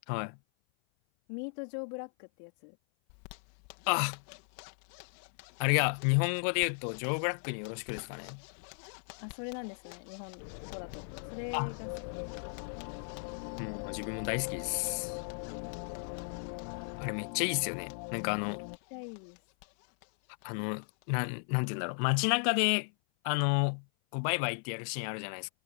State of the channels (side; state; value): right; silent; 54 dB below the other